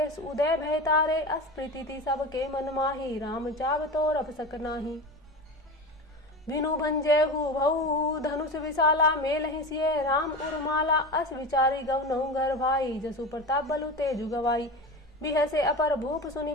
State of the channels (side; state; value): both; normal; correlation 0.27